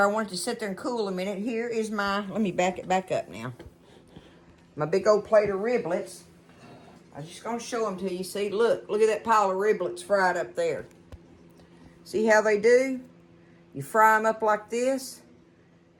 I want it to sit there and cool a minute. Here is my, let me back it back up now. My big old plate of riblets. I'm just going to show them to you. See, look at that pile of riblets fried up there. See how they do? You fry them up like this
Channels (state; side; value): identical; both; correlation 1.00